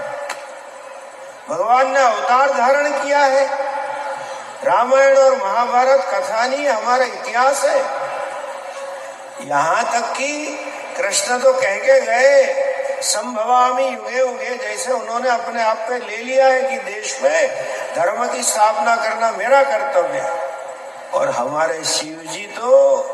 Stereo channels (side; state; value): both; identical; correlation 1.00